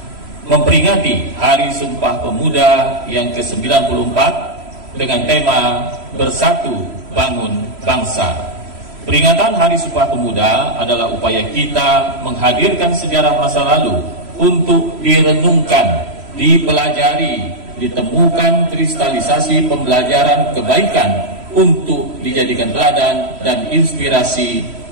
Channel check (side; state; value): left; late; 3.0 ms